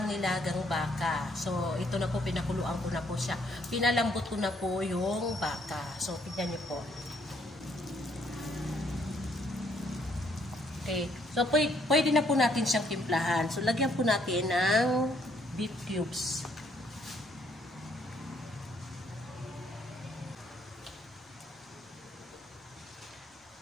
nilagang baka. So ito na po, pinakuluan ko na po siya. Pinalambot ko na po yung baka. So tignan niyo po. Okay. So, pwede na po natin siyang timplahan. So, lagyan po natin ng beef cubes.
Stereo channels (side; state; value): both; normal; correlation 0.68